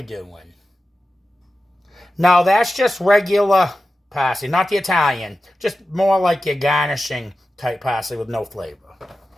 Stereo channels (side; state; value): both; normal; correlation 0.93